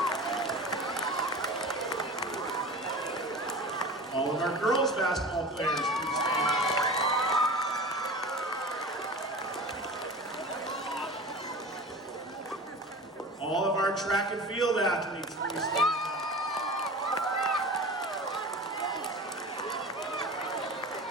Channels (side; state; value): both; normal; correlation 0.34